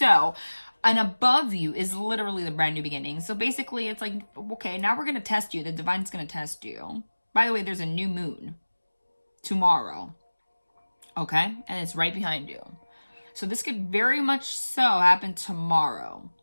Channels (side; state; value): both; inverted; correlation -1.00